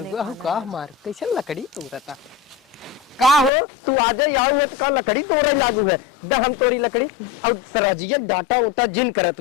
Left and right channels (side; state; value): right; drops out; at 3.5 s